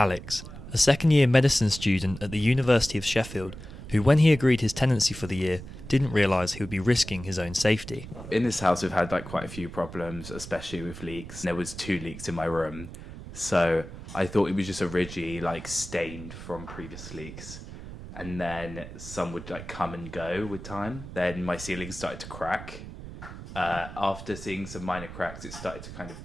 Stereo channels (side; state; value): right; noise; rumble, 12 dB below the sound